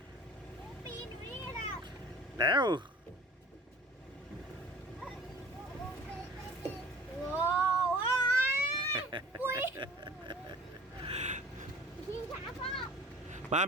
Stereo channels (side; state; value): both; normal; correlation 0.46